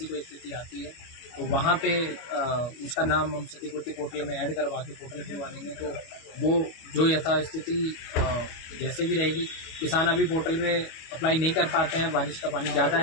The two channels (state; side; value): late; right; 25 ms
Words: कोई स्थिति आती है तो वहाँ पे उसका नाम हम क्षतिपूर्ति पोर्टल में ऐड करवा के पोर्टल खुलवा देंगे। तो वो जो यथास्थिति जैसे भी रहेगी, किसान अभी पोर्टल में अप्लाई नहीं कर पाते हैं, बारिश का पानी ज़्यादा